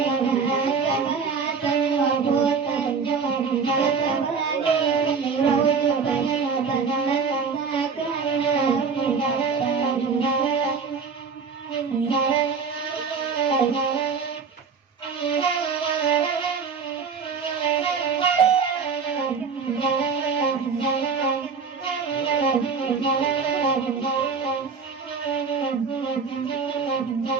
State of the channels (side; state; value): left; quieter; 5.5 dB